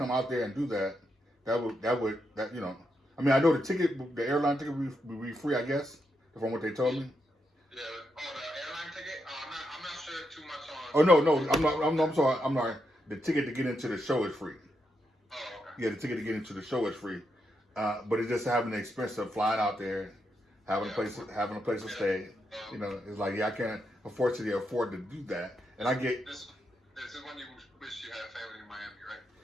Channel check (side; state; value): both; normal; correlation 0.82